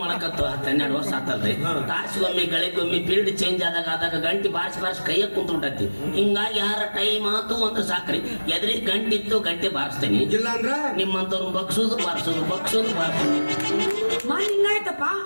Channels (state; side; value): inverted; both; correlation -1.00